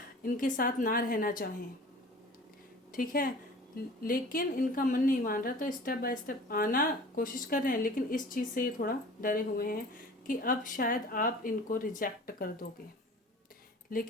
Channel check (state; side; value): normal; both; correlation 0.43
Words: इनके साथ ना रहना चाहें। ठीक है, लेकिन इनका मन नहीं मान रहा, तो स्टेप बाय स्टेप आना कोशिश कर रहे हैं, लेकिन इस चीज़ से ये थोड़ा डरे हुए हैं कि अब शायद आप इनको रिजेक्ट कर दोगे।